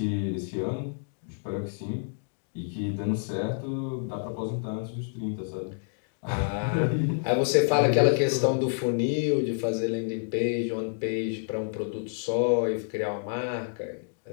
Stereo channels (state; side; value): silent; right; digital silence